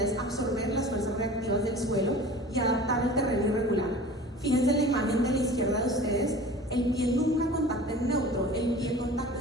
es absorber las fuerzas reactivas del suelo y adaptar el terreno irregular. Fíjense en la imagen de la izquierda de ustedes, el pie nunca contacta en neutro, el pie contacta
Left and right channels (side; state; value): both; normal; correlation 0.40